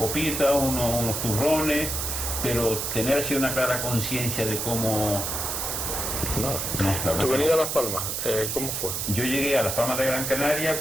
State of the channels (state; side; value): noise; right; hiss, 2 dB below the sound